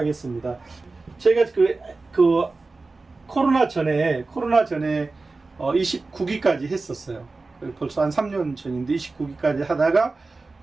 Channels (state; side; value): quieter; left; 3.6 dB